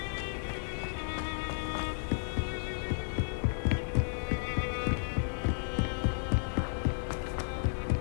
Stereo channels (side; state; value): right; silent; digital silence